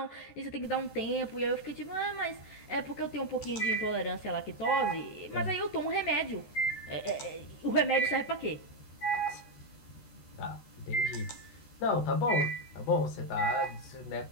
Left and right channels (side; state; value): right; late; 14 ms